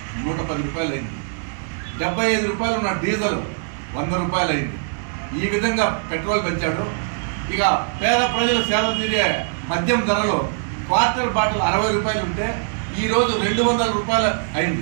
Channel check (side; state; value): left; silent; digital silence